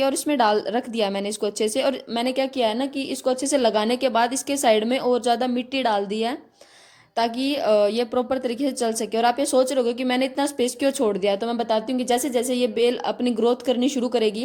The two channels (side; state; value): both; identical; correlation 1.00